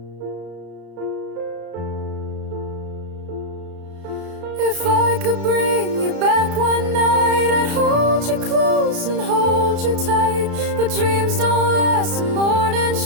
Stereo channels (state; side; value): late; left; 33 ms